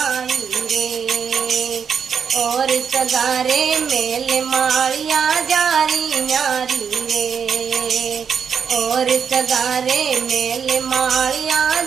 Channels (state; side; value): quieter; left; 6.9 dB